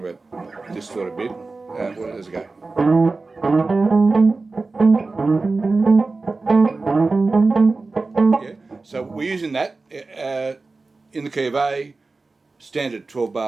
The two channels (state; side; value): quieter; left; 3.7 dB